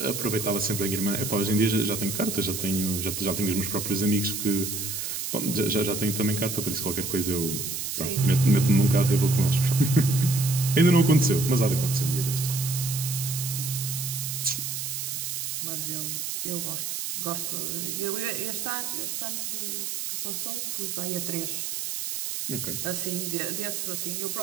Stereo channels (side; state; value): right; noise; hiss, 4 dB below the sound